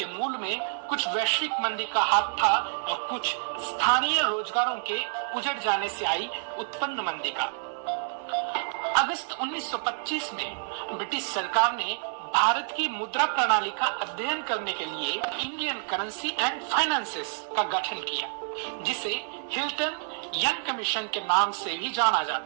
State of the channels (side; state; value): left; silent; 58 dB below the other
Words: मूल में कुछ वैश्विक मंदी का हाथ था और कुछ स्थानीय रोजगारों के उजड़ जाने से आई उत्पन्न मंदी का। अगस्त 1925 में ब्रिटिश सरकार ने भारत की मुद्रा प्रणाली का अध्ययन करने के लिए इंडियन करेंसी एंड फाइनेंसेस का गठन किया, जिसे हिल्टन यंग कमीशन के नाम से भी जाना